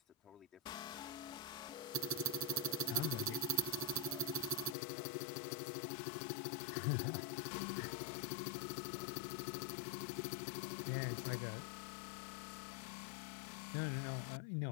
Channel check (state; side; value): drops out; right; at 4.8 s